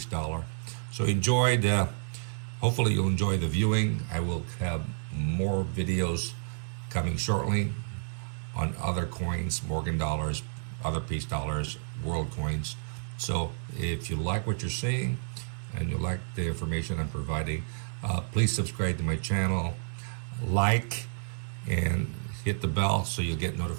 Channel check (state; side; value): silent; left; digital silence